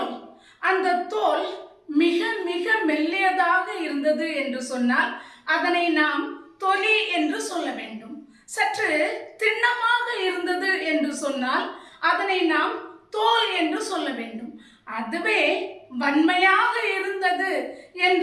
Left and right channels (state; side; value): identical; both; correlation 1.00